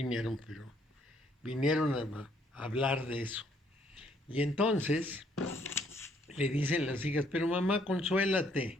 pero vinieron a hablar de eso. Y entonces le dicen las hijas, pero mamá,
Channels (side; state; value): both; normal; correlation 0.67